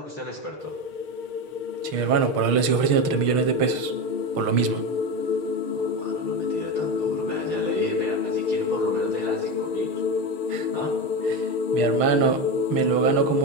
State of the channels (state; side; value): late; left; 6.5 ms